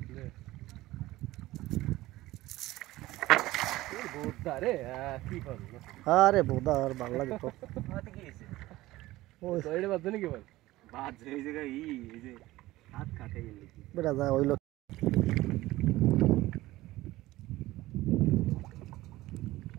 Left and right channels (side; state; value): left; quieter; 17.4 dB